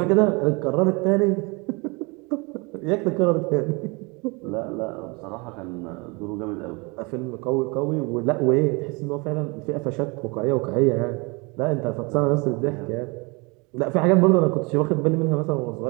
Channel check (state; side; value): quieter; left; 28.5 dB